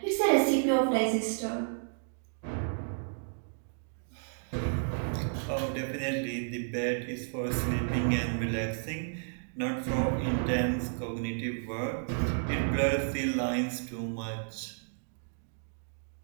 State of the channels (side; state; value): left; silent; digital silence